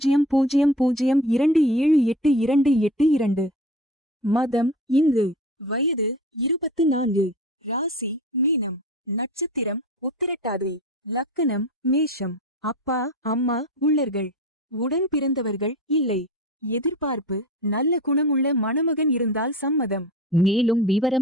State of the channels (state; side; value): normal; both; correlation 0.34